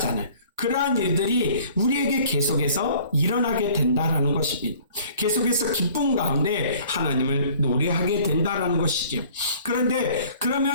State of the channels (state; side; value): inverted; both; correlation -0.52